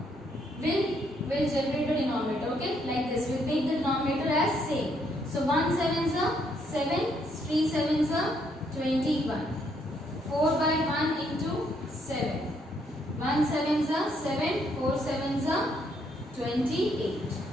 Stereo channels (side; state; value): both; normal; correlation 0.72